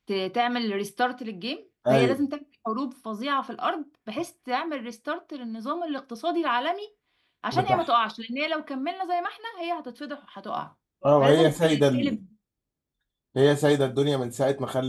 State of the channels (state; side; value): identical; both; correlation 1.00